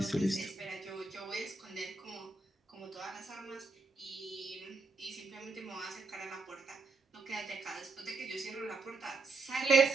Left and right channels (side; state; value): left; quieter; 3.7 dB